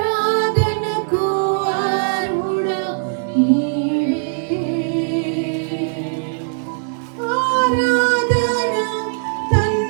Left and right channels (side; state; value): left; silent; digital silence